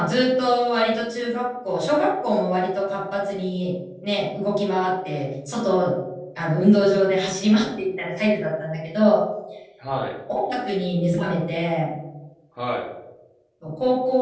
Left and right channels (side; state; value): both; identical; correlation 1.00